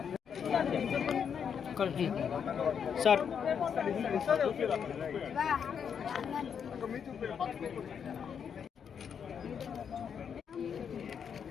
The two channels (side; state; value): right; quieter; 7.4 dB